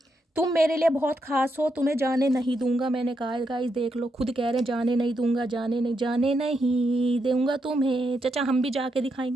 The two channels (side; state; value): both; normal; correlation 0.82